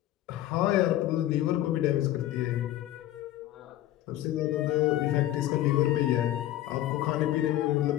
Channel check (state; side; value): quieter; right; 13.8 dB